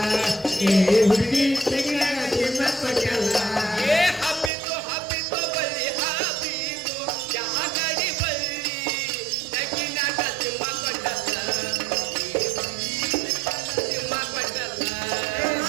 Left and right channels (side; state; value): left; drops out; at 4.5 s